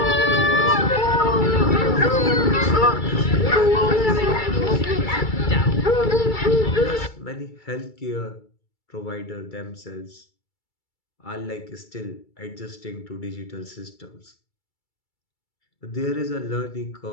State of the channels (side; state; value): right; late; 2.3 ms